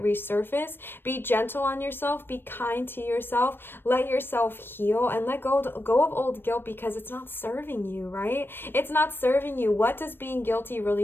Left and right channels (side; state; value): right; late; 0.099 ms